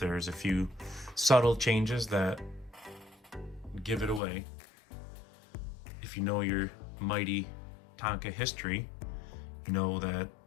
a few subtle changes that give it away. If you know your Mighty Tonka history, you know that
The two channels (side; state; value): right; drops out; at 4.2 s